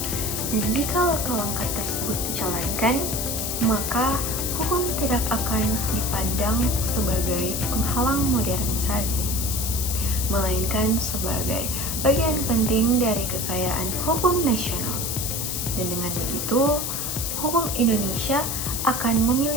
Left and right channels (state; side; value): noise; left; hiss, 2 dB below the sound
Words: Dan jika langkah-langkah tersebut dijalankan, maka hukum tidak akan dipandang sebagai penghalang modernisasi, melainkan sebagai bagian penting dari kekayaan hukum nasional. Dan dengan begitu, hukum Indonesia akan